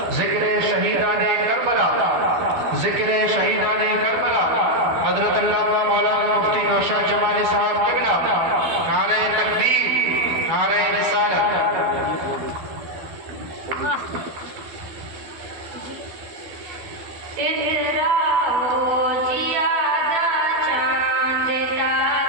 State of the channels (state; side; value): late; left; 12 ms